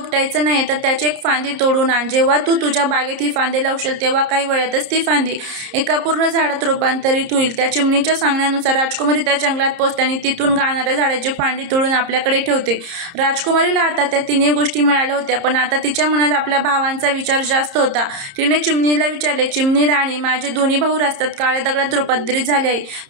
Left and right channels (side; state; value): left; late; 30 ms